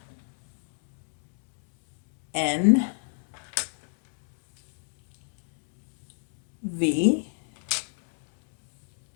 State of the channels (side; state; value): right; silent; 57 dB below the other